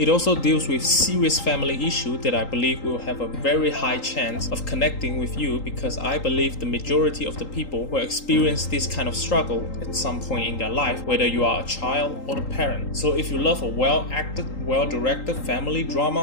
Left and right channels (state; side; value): late; right; 3.8 ms